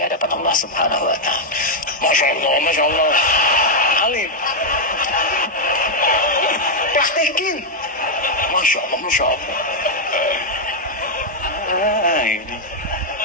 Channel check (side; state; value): both; normal; correlation -0.01